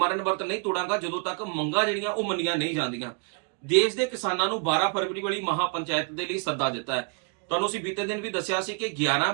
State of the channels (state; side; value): quieter; left; 36.2 dB